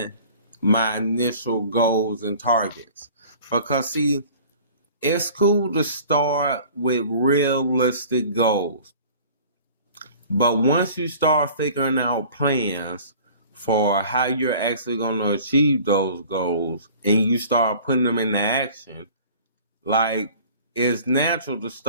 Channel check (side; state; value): both; inverted; correlation -0.47